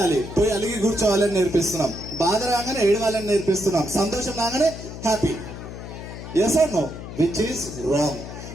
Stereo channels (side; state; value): left; noise; hum, 11 dB below the sound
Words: పోయి అలిగి కూర్చోవాలని నేర్పిస్తున్నాం. బాధ రాగానే ఏడవాలని నేర్పిస్తున్నాం. సంతోషం రాగానే happy. Yes or no? Which is wrong.